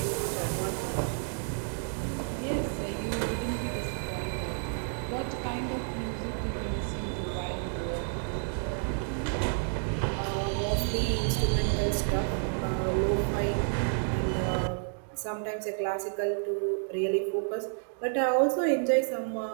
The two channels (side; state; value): left; silent; 57 dB below the other